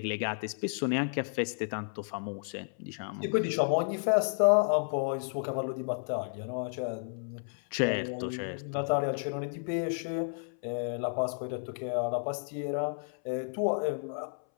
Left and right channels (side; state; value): right; silent; 57 dB below the other